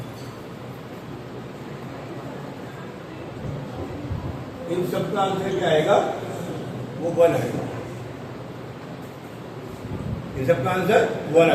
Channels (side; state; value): both; identical; correlation 1.00